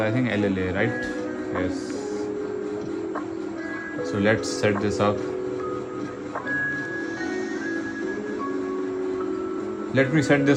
think, LLA, right? Yes. So let's set this up. Let me set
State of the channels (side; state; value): both; identical; correlation 1.00